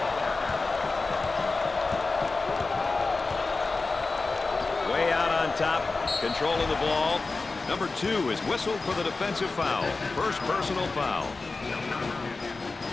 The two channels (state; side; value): quieter; right; 3.7 dB